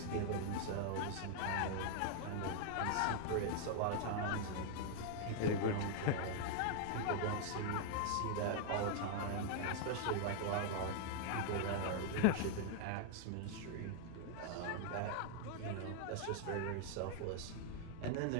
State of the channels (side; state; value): both; different; correlation 0.00